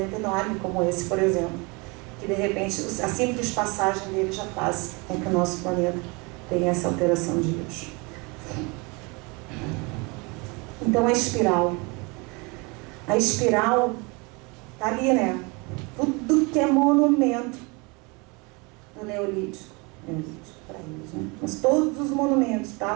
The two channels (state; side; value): quieter; left; 28.5 dB